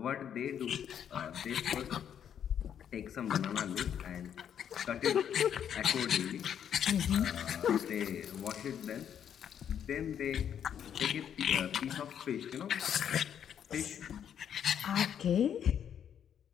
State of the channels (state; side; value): quieter; right; 8.9 dB